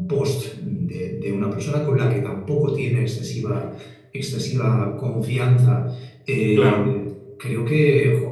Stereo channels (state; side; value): identical; both; correlation 1.00